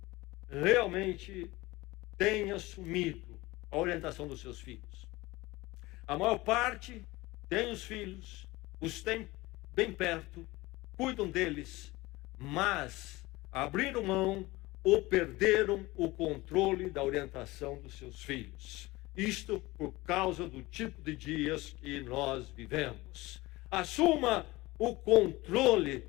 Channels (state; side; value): quieter; right; 20.7 dB